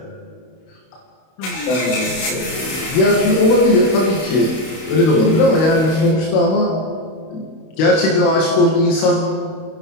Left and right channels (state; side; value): late; right; 32 ms